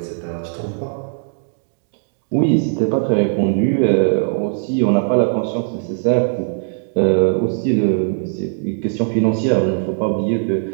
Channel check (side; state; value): left; silent; digital silence